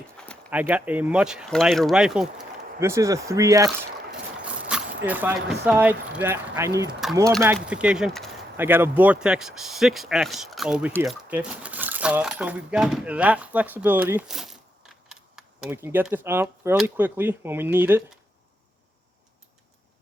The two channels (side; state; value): both; normal; correlation 0.80